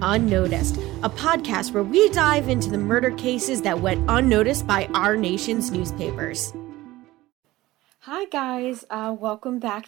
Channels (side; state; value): left; quieter; 17.7 dB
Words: Unnoticed, a podcast where we dive into the murder cases that went unnoticed by our nation's newspapers. Hi guys, welcome